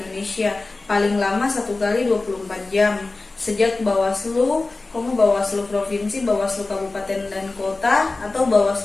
paling lama 1 kali 24 jam sejak Bawaslu, Bawaslu Provinsi, Bawaslu Kabupaten dan Kota, atau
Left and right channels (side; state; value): right; quieter; 3.4 dB